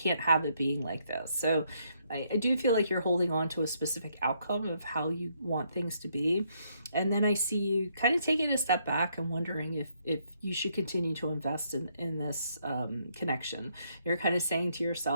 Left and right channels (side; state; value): both; inverted; correlation -0.72